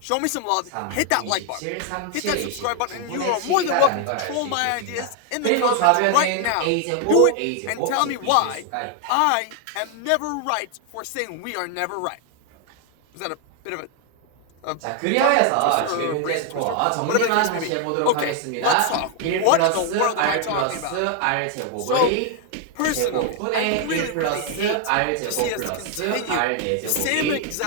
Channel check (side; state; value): both; different; correlation 0.00